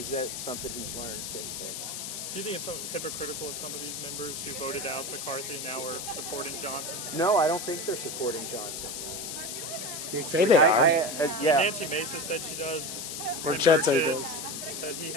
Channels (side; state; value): left; noise; hiss, 6 dB below the sound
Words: that something he's learned since then? Do you think it's so hypocritical of some of these members who voted out McCarthy and now are supporting Johnson? No, I don't think they're supporting Johnson. You say they are. Yeah. Nancy Mason said she does. Burchett said he Burchett does. Said he